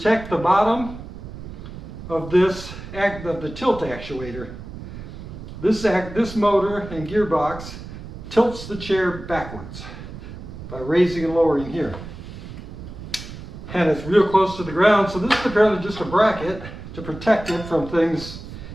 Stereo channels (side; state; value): right; noise; rumble, 12 dB below the sound